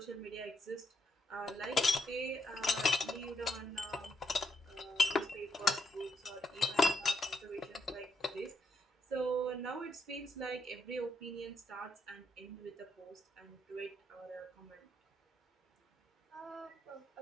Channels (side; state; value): both; normal; correlation 0.77